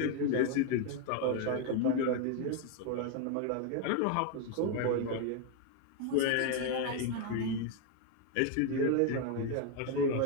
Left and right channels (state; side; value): different; both; correlation 0.01